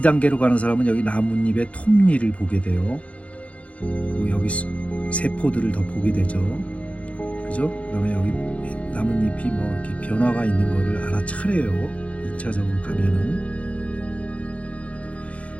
가는 사람은 여기 나뭇잎의 톱니를 보게 돼요. 그리고 여기 세포들을 더 보게 되죠. 그죠? 그다음에 여기 나뭇잎이 뭐 이렇게 변화가 있는 거를 알아차려요. 2차적으로 가면은.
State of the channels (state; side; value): late; right; 0.064 ms